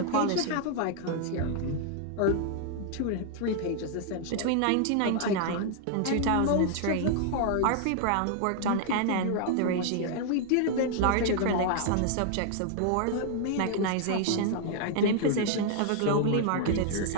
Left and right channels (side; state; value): both; different; correlation 0.00